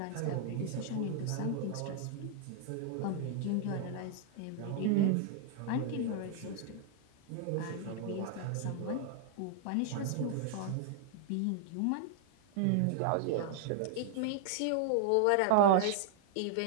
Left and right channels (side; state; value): both; different; correlation 0.00